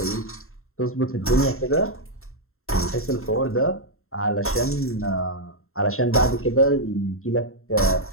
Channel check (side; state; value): right; late; 0.62 ms